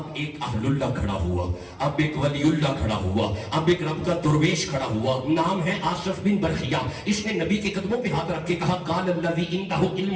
ایک اہل اللہ کھڑا ہوا, اب ایک ولی اللہ کھڑا ہوا, اب ایک رب کا درویش کھڑا ہوا. نام ہے آصف بن برخیہ. اس نے نبی کے قدموں پہ ہاتھ رکھ کے کہا قال الذی عنده علم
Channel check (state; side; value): identical; both; correlation 1.00